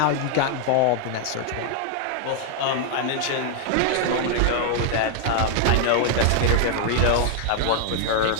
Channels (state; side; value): different; both; correlation 0.00